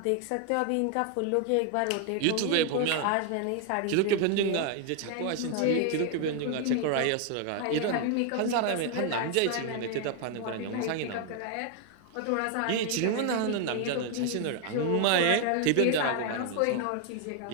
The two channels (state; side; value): different; both; correlation 0.00